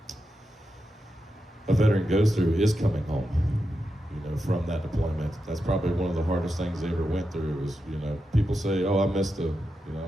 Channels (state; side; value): normal; both; correlation 0.88